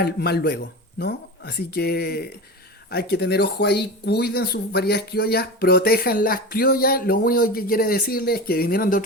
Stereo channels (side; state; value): both; normal; correlation 0.27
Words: mal luego, ¿no? Así que hay que tener ojo ahí, cuiden sus variedades criollas, protejan las criollas. Lo único que quiere decirles es que vinieron de